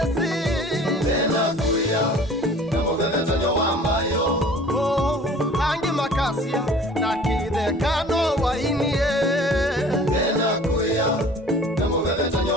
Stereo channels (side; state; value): both; normal; correlation 0.47